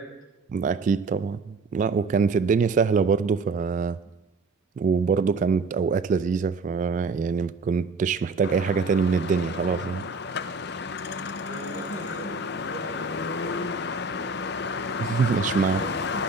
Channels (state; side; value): quieter; left; 3.8 dB